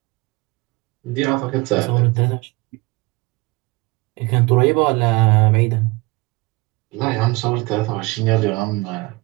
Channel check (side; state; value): left; quieter; 24.1 dB